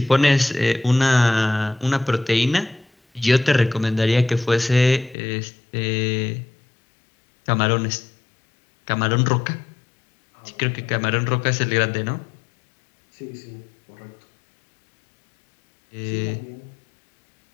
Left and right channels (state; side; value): drops out; right; at 5.2 s